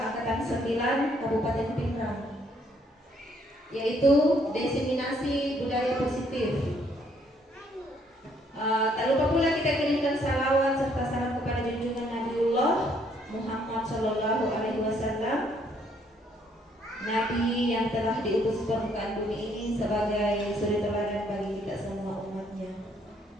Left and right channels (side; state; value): both; normal; correlation 0.68